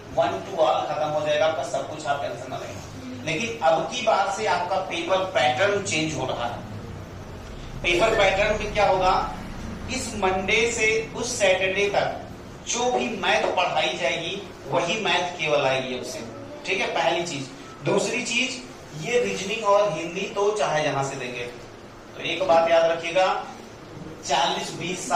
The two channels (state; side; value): identical; both; correlation 1.00